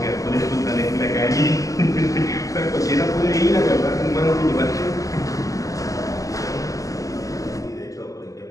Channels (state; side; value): late; right; 0.16 ms